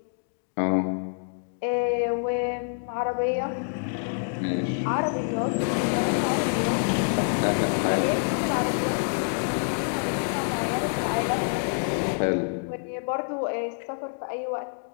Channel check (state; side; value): silent; right; digital silence